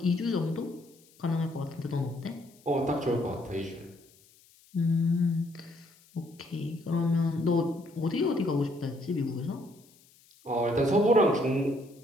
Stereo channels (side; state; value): left; noise; hiss, 29 dB below the sound